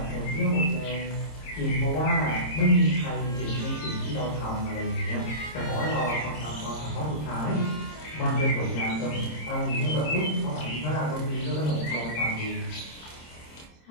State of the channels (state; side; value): late; right; 26 ms